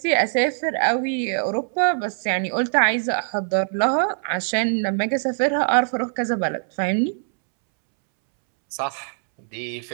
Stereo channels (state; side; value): silent; left; 64 dB below the other